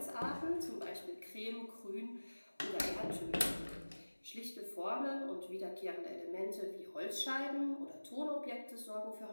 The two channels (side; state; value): both; inverted; correlation -1.00